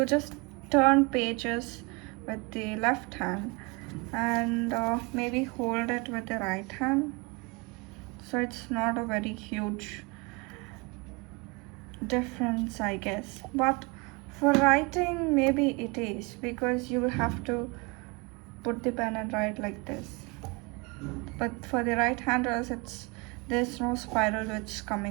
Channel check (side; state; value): left; quieter; 28.4 dB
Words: just turn pages with the left hand and maybe hold it with the right hand. So it's not a very huge difference, I guess. But for writing, maybe it is because you will have to put the pen and write like this. But for the right handers, there's no spiral which